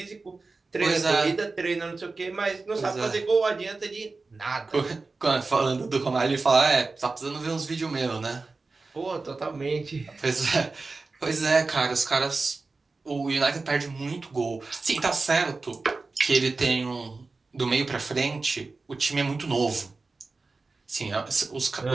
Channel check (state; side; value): quieter; left; 3.8 dB